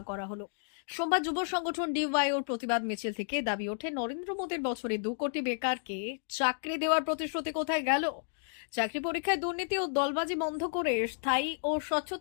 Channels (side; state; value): right; silent; digital silence